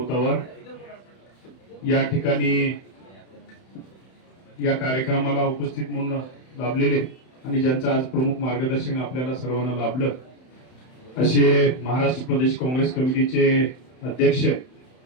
या ठिकाणी या कार्यक्रमाला उपस्थित म्हणून लाभलेले आणि ज्यांचं आज प्रमुख मार्गदर्शन आपल्याला सर्वांना लाभलं असे महाराष्ट्र प्रदेश काँग्रेस कमिटीचे अध्यक्ष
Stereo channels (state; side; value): late; right; 31 ms